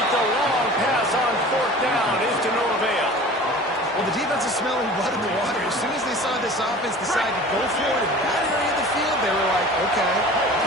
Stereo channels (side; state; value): both; normal; correlation 0.41